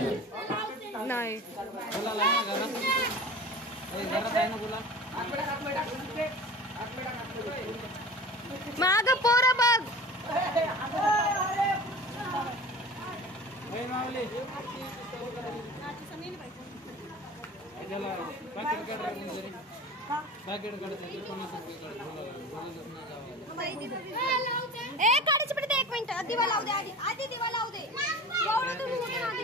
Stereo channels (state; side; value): normal; both; correlation 0.37